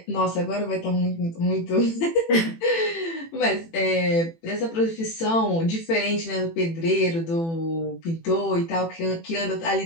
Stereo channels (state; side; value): late; right; 18 ms